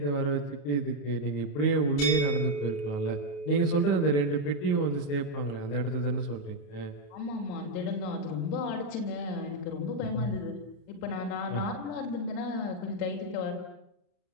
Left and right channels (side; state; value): right; late; 34 ms